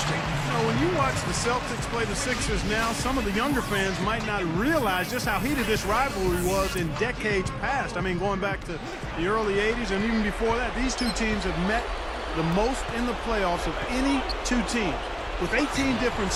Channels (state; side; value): identical; both; correlation 1.00